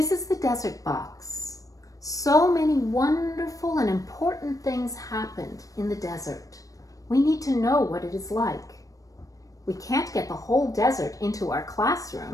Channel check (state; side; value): late; right; 0.16 ms